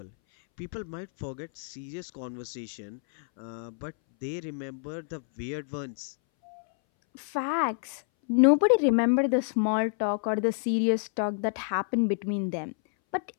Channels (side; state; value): right; silent; 59 dB below the other